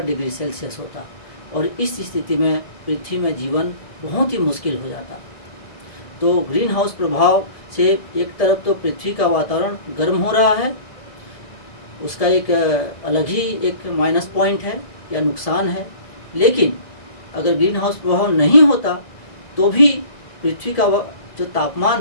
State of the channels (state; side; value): late; right; 1.7 ms